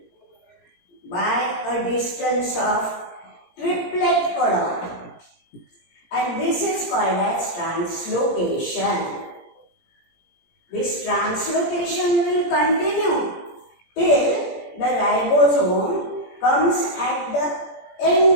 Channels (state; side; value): late; right; 17 ms